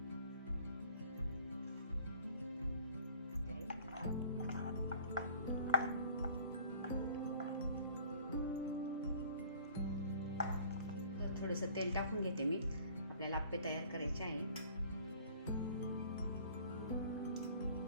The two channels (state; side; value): inverted; both; correlation -0.52